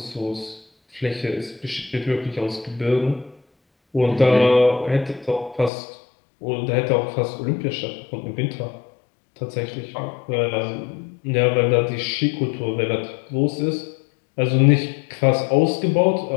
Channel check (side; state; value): right; drops out; at 5.7 s